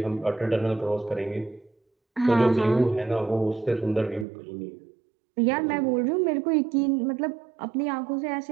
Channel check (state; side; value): drops out; left; at 4.2 s